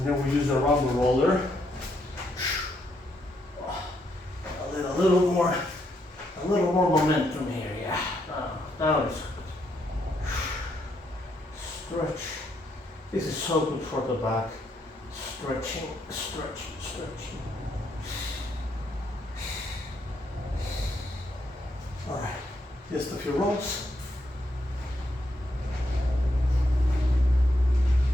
then we use the rumble roller. A little more momentum here, yeah. Now it's stretch. This is so good for the back. Stretching. All right, just a few rolls.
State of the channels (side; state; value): both; normal; correlation 0.77